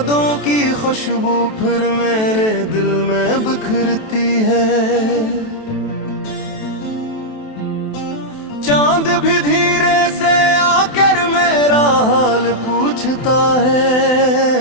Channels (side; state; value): right; late; 28 ms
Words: की खुशबू फिर मेरे दिल में बिखरती है। चांद भी धीरे से आकर मेरा हाल पूछता